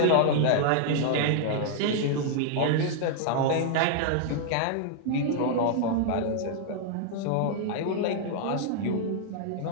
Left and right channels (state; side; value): different; both; correlation -0.01